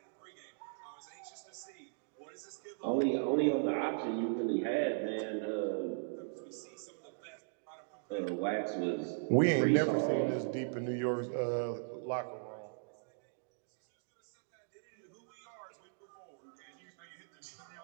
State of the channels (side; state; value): left; silent; digital silence